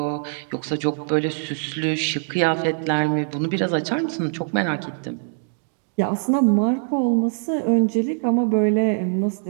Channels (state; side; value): silent; left; digital silence